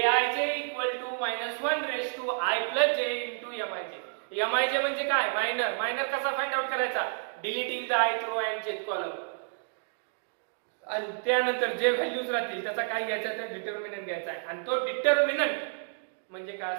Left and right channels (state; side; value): silent; left; digital silence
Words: equal to -1 to I + j into Mij. Mij म्हणजे काय मायनर कसा फाइंड आउट करायचा deleting the ith row and jth column. आणि त्यानंतर जे व्हॅल्यूज राहतील त्याचा काय घ्यायचा तर डिटर्मिनंट घ्यायचा आहे आणि तो डिटर्मिनंट म्हणजे काय